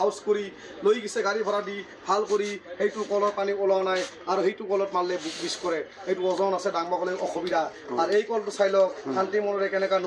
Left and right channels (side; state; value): both; identical; correlation 1.00